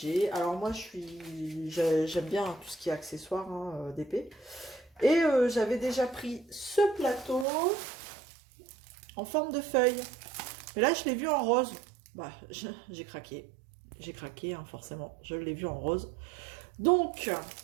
Alors moi, j'aime bien tout ce qui est accessoire, hein, d'épée. Et j'avais déjà pris ce plateau en forme de feuille. Mais là, je l'ai vu en rose. Bah, j'ai craqué. J'ai craqué, hein, forcément. Je l'ai vu en rose. Donc,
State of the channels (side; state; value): left; drops out; at 7.5 s